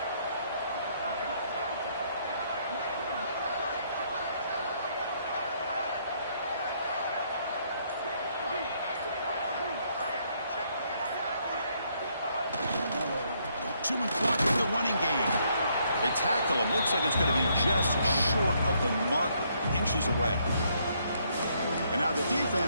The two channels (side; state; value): both; inverted; correlation -0.71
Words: Chewing clock with the running game. They tackle him. Looks like it's going to be just short of the marker, inches away. And now the